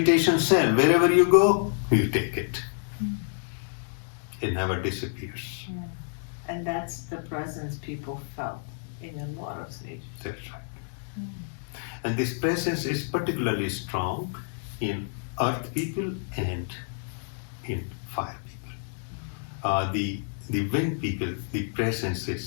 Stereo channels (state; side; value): silent; right; digital silence